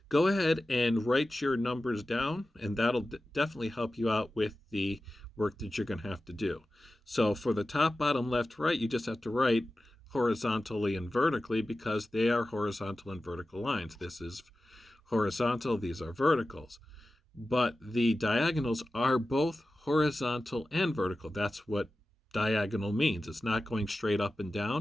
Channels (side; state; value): both; normal; correlation 0.94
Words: go ahead and write your numbers down, and that'll definitely help you out with the work that you're going to have to do. So for the top, bottom, left, right, you just have to write horizontally and vertically because they are horizontal and vertical lines. This is horizontal, these are verticals. But the diagonals are both horizontal and vertical. That's what diagonal means. It's not going straight up and